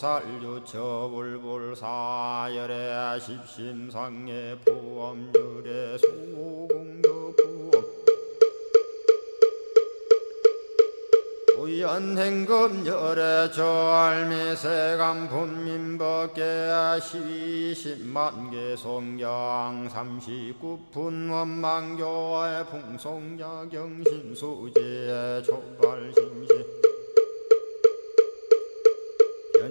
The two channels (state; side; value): inverted; both; correlation -1.00